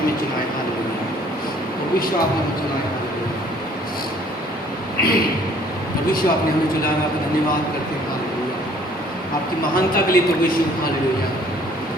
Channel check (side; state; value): both; normal; correlation 0.57